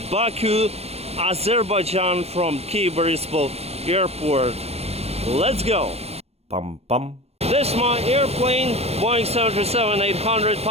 Baku, Azerbaijan from Kyiv Airport. Let's go! Pum pum. This is my airplane, Boeing 737-800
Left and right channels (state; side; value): late; left; 0.30 ms